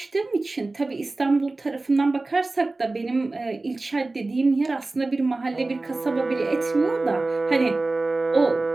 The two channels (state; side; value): quieter; left; 3.2 dB